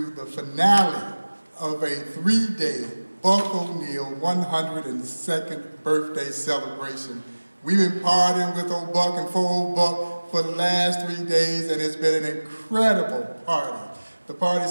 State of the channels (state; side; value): inverted; both; correlation -1.00